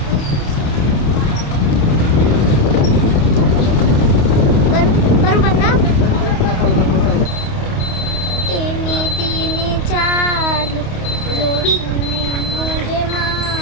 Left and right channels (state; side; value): late; right; 28 ms